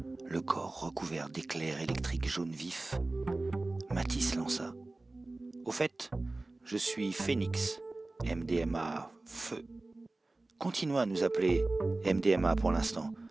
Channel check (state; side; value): quieter; left; 3.0 dB